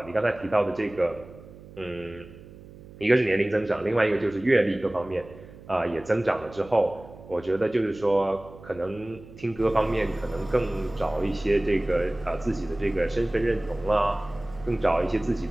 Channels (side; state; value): right; noise; hum, 19 dB below the sound